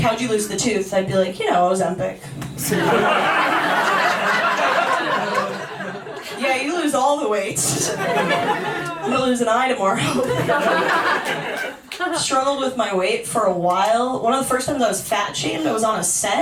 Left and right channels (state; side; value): identical; both; correlation 1.00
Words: how'd you lose the tooth? I'd be like, Ozempic. Yeah, you lose all the weight. I'm gonna lose an eye tomorrow. Struggled with my weight for a while. One of the first times I was fat shamed, I was on a